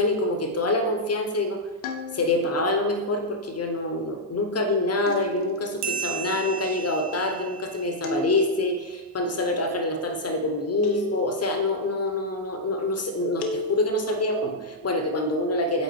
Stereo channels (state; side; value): normal; both; correlation -0.06